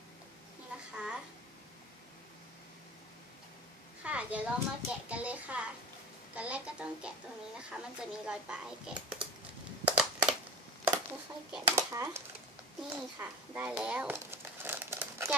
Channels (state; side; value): normal; both; correlation 0.31